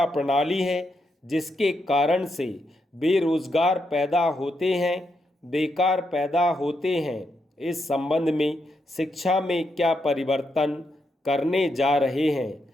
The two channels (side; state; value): both; normal; correlation 0.82